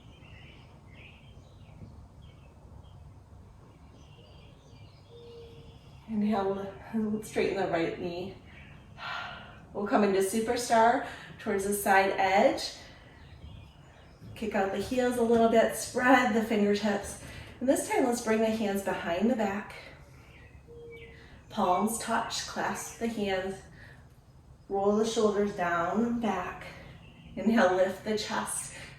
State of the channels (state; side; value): identical; both; correlation 1.00